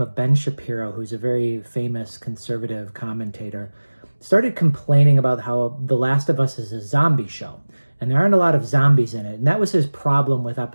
of Ben Shapiro, who's a very famous conservative commentator, started complaining about how The Last of Us is a zombie show, and there aren't a lot of zombies in it. And that was his problem with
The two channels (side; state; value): both; inverted; correlation -1.00